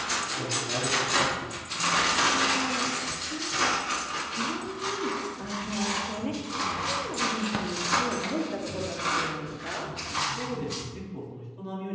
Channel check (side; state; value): both; identical; correlation 1.00